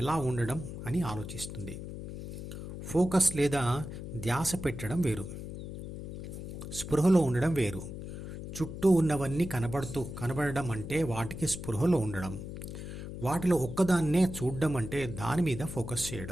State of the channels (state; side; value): noise; left; hum, 8 dB below the sound